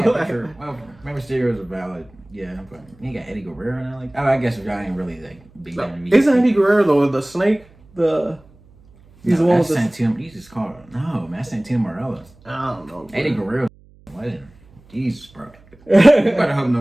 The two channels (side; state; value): right; noise; hum, 27 dB below the sound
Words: get a picture. Well, Rey Mysterio is a valid, yeah. But you got Eddie Guerrero now, like. Oh, I guess y'all ain't really like big. Isn't Eddie Guerrero though the snake? He's the one with the Santino. You just call it. No, man, that's Santino Marella. I don't know. Bro. Eddie Guerrero, legend. Jesus, bro. You better hope